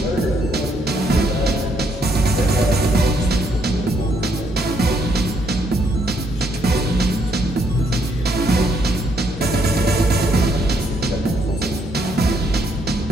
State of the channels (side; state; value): both; normal; correlation 0.72